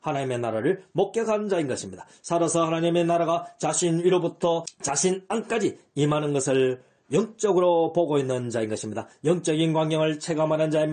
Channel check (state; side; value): identical; both; correlation 1.00